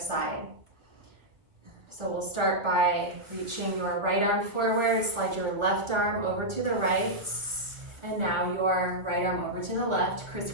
So we'll start by reaching your right arm forward, slide your left arm over to the right, and now your right arm over to the left,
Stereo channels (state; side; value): late; left; 1.6 ms